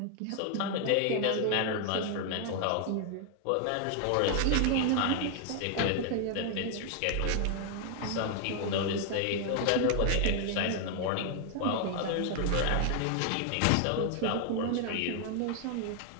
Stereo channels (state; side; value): different; both; correlation 0.00